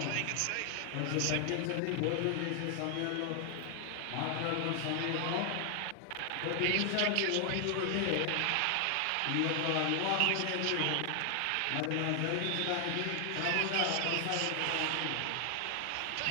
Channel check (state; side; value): different; both; correlation 0.00